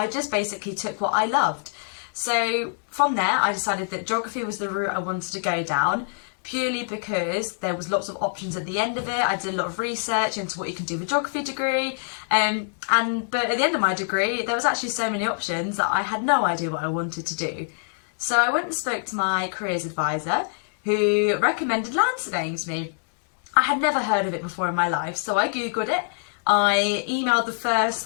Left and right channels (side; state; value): right; silent; digital silence